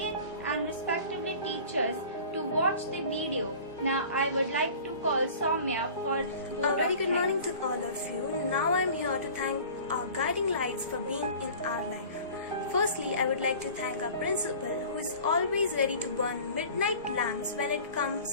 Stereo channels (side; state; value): both; inverted; correlation -0.43